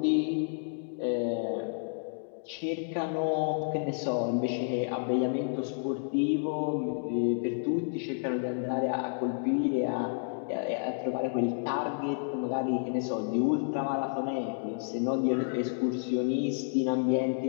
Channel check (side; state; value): right; silent; digital silence